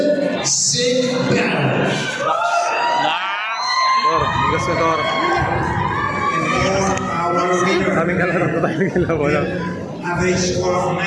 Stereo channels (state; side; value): identical; both; correlation 1.00